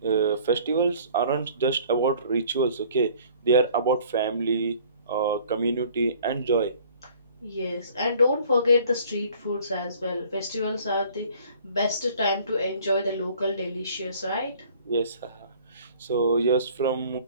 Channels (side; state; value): both; inverted; correlation -0.53